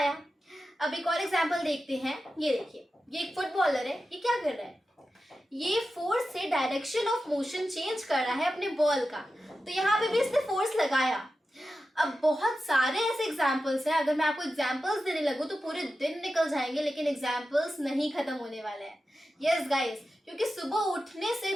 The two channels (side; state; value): both; normal; correlation 0.92